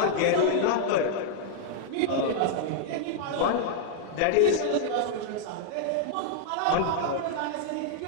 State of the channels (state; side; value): different; both; correlation -0.01